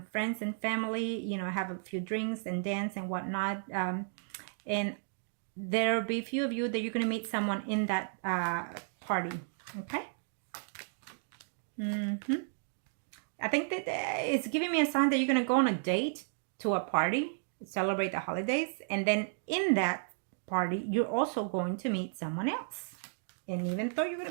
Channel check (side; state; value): left; silent; digital silence